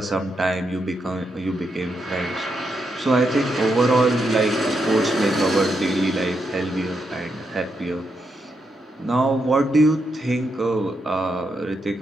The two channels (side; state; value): both; normal; correlation 0.82